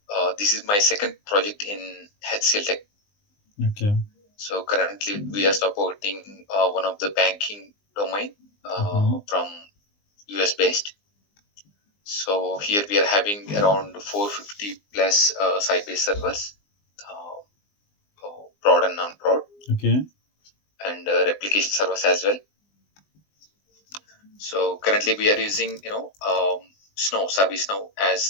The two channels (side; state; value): right; late; 20 ms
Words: this is my second project in HCL Tech. Okay. So currently, we are supporting one of the banking domain Mm-hmm. from US based. So here we are having around 450 plus Sybase servers, prod and non-prod, Okay. and replication servers as well. So currently we are using Snow Service Now